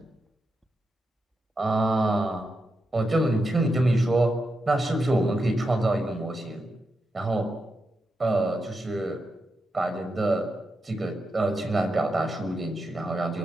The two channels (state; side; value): normal; both; correlation 0.86